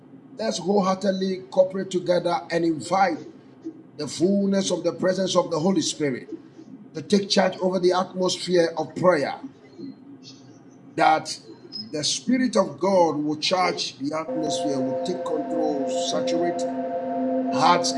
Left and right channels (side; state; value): both; identical; correlation 1.00